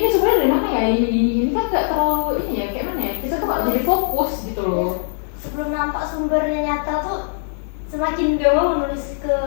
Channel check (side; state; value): right; silent; digital silence